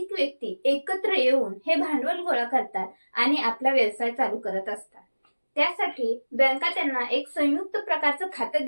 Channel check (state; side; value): inverted; both; correlation -1.00